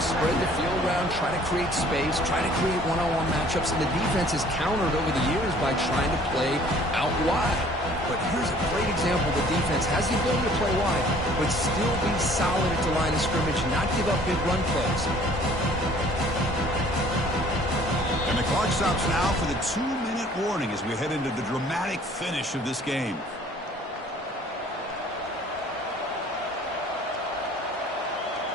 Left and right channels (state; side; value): normal; both; correlation 0.54